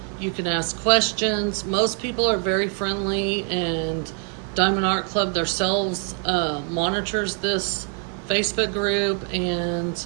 You can ask questions. Most people are very friendly, and Diamond Art Club themselves monitors this Facebook group, and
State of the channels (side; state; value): left; quieter; 38.9 dB